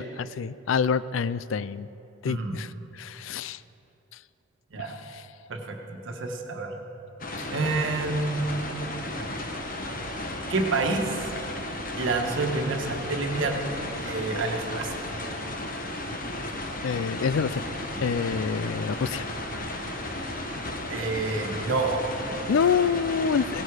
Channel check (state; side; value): normal; both; correlation 0.16